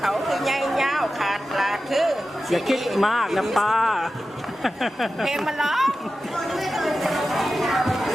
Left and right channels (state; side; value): normal; both; correlation 0.93